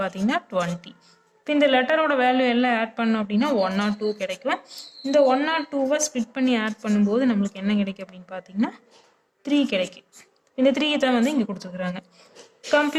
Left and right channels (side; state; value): both; identical; correlation 1.00